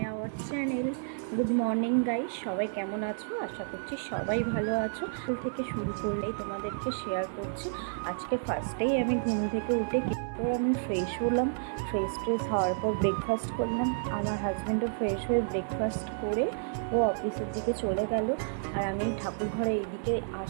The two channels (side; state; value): left; silent; 55 dB below the other